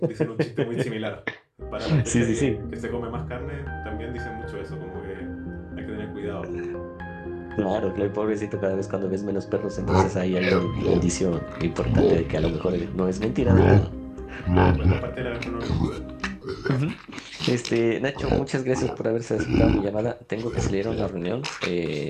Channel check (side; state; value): both; identical; correlation 1.00